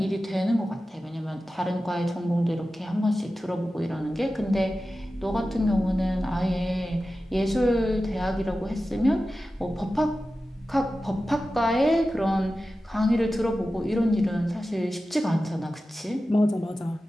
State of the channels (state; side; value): normal; both; correlation 0.94